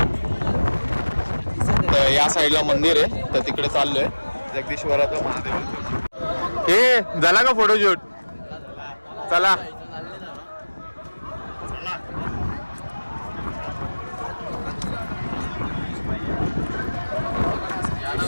तर या साईडला मंदिर आहे, तर तिकडे चाललोय जगदीश्वराचं महादेव. हे झाला का फोटोशूट? चला.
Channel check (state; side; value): inverted; both; correlation -1.00